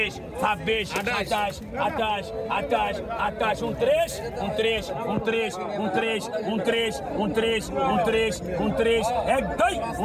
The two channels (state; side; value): identical; both; correlation 1.00